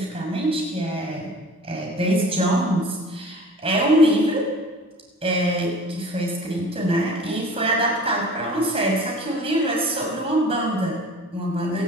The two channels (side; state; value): both; normal; correlation 0.43